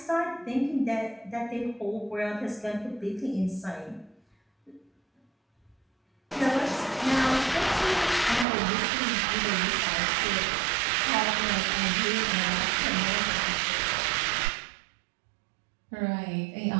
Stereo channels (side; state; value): left; drops out; at 8.5 s